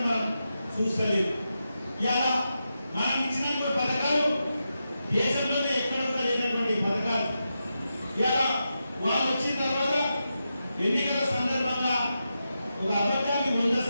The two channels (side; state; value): both; inverted; correlation -0.88